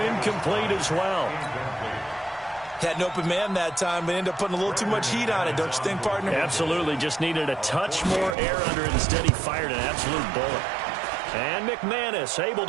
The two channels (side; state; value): left; drops out; at 8.3 s